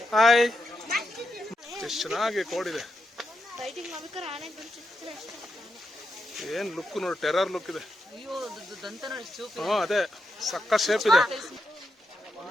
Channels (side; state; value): both; normal; correlation 0.85